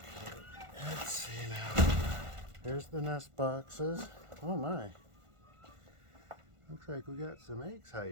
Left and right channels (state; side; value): late; left; 1.5 ms